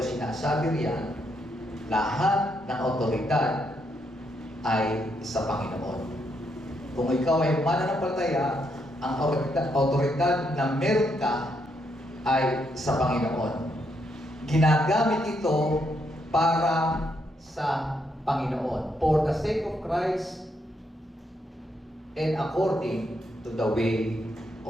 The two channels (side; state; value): both; normal; correlation 0.77